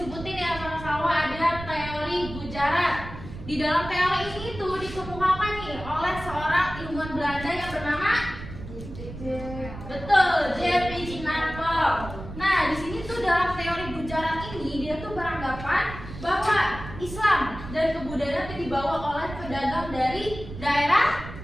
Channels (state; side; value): noise; right; rumble, 12 dB below the sound